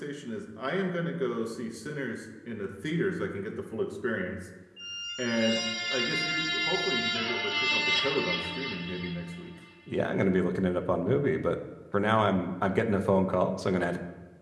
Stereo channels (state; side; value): identical; both; correlation 1.00